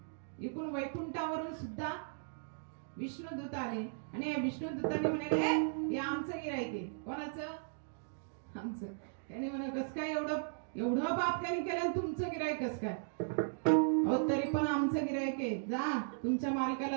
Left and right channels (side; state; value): left; silent; digital silence